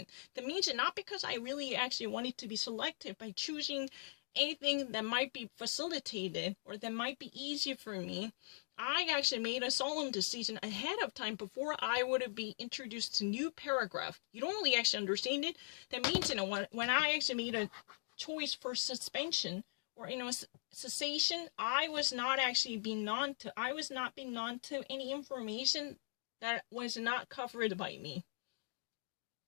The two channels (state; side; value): silent; right; digital silence